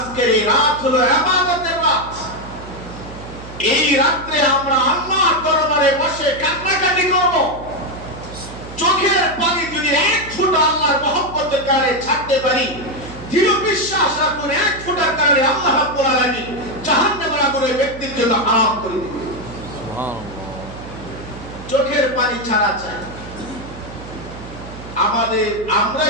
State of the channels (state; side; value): noise; right; hum, 14 dB below the sound